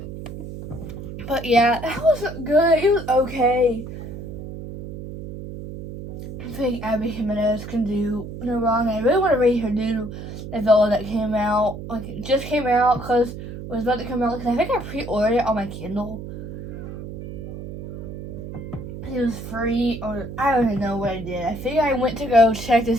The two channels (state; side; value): noise; right; hum, 10 dB below the sound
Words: But yeah, that was good. It was okay. I think Abby Jimenez can do no wrong. I really want to read her new novella that came out. Like, it just came out because it was about to come out. Because I think I pre-ordered it on my Kindle. It was free, or I don't even know what I did. I think I went to go check to